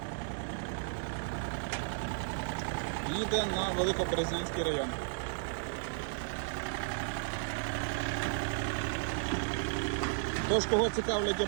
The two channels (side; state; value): left; silent; digital silence